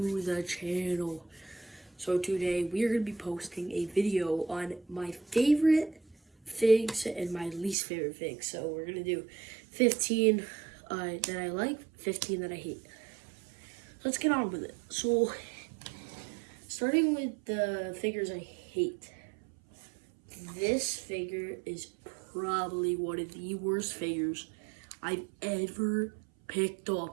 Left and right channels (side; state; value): left; drops out; at 7.8 s